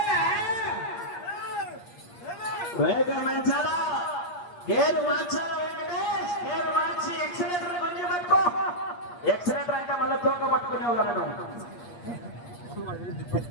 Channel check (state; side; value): late; right; 8.5 ms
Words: వేగం పెంచాలా, గేరు మార్చాలా వెంకటేష్? గేరు మార్చి ఎక్సలేటర్ కొంచెం పట్టుకో. ఎక్సలేటర్ అంటే మళ్ళీ తోక పట్టుకునే వాళ్ళను.